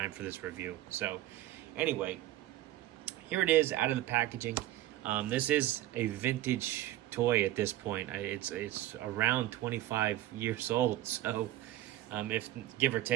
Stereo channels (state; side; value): quieter; left; 14.7 dB